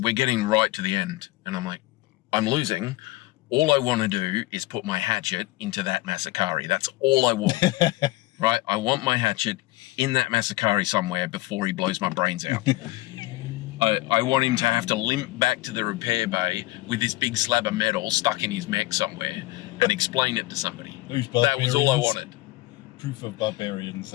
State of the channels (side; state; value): right; quieter; 19.3 dB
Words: getting right to the end, and I'm like, I'm losing. All I want to do is put my hatchet into that Masakari. That's all I want, right? I want my hatchet in that Masakari somewhere before he blows my brains out. I want him to have to limp back to the repair bay with this big slab of metal stuck in his mech somewhere and explain it to somebody. That was all I wanted. Proof of barbarians.